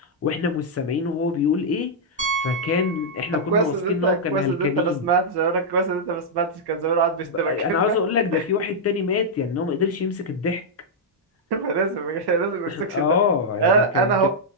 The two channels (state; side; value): normal; both; correlation -0.06